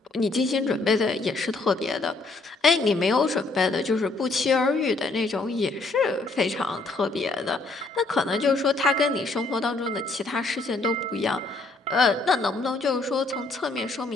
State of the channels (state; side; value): quieter; right; 3.3 dB